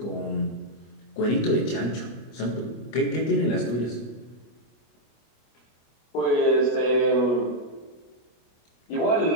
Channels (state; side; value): late; right; 25 ms